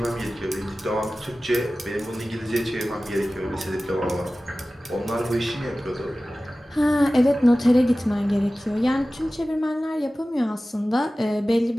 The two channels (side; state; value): both; normal; correlation 0.96